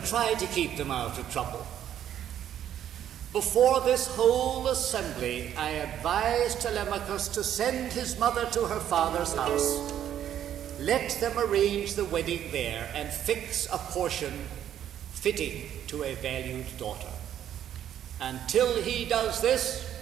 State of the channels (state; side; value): quieter; left; 10.5 dB